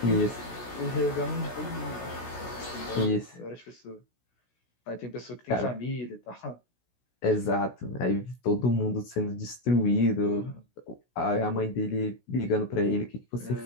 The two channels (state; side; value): late; right; 16 ms